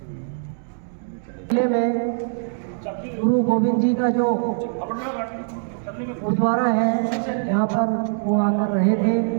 किले में गुरु गोविंद जी का जो गुरुद्वारा है, यहाँ पर वो आकर रहे थे,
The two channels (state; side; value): silent; left; digital silence